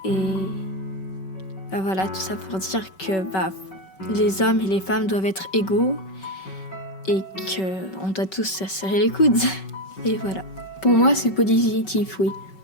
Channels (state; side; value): late; right; 5.3 ms